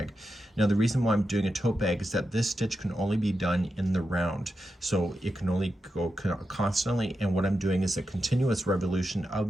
Now the reason why I'm doing a tote bag is that this stitch can only be done in the round. So it can only go constantly, and what I'm doing is a continuous revolution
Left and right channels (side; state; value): both; normal; correlation 0.88